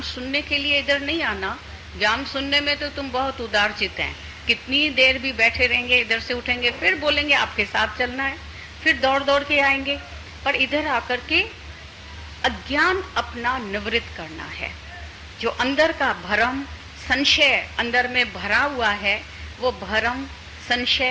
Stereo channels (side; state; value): both; identical; correlation 1.00